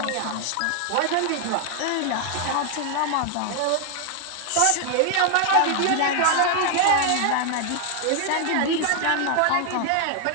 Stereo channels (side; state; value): both; different; correlation 0.00